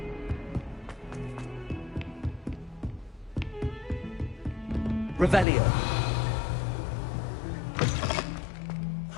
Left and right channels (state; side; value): drops out; right; at 5.5 s